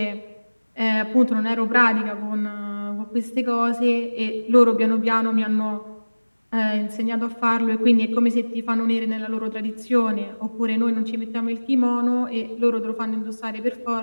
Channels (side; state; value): both; inverted; correlation -1.00